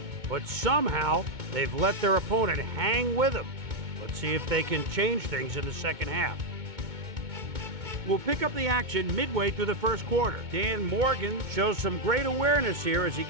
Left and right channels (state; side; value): late; left; 2.2 ms